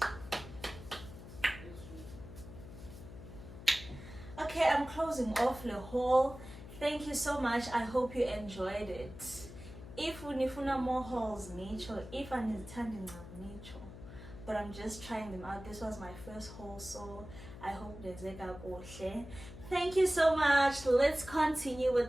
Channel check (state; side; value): noise; left; hum, 14 dB below the sound